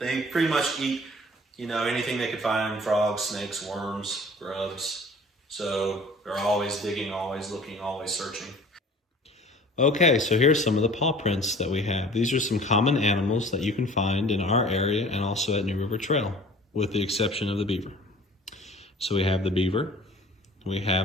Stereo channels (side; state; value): both; normal; correlation 0.47